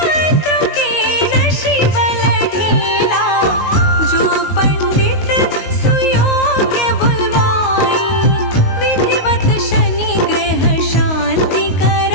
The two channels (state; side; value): late; right; 19 ms